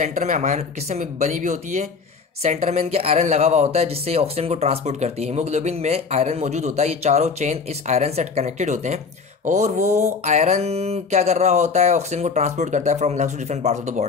में अमाइनो किससे बनी हुई होती है? सेंटर में इनके आयरन लगा हुआ होता है, जिससे ऑक्सीजन को ट्रांसपोर्ट करती है। हीमोग्लोबिन में आयरन मौजूद होता है, ये चारों चेन इस आयरन से कनेक्टेड होते हैं, और वो आयरन क्या कर रहा होता है? ऑक्सीजन को ट्रांसपोर्ट करता है from lungs to different parts of the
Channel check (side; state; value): right; quieter; 5.1 dB